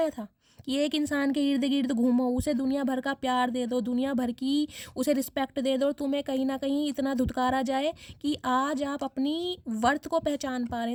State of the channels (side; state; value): both; identical; correlation 1.00